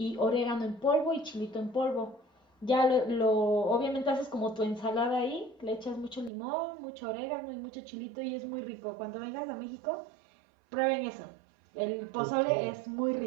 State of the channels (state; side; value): drops out; left; at 6.3 s